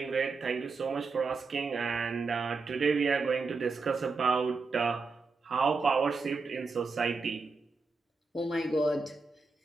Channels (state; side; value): quieter; left; 4.3 dB